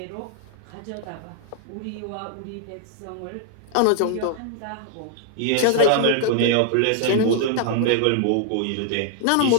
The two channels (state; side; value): different; both; correlation 0.00